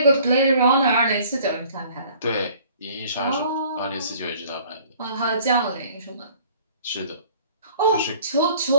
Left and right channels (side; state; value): both; inverted; correlation -0.53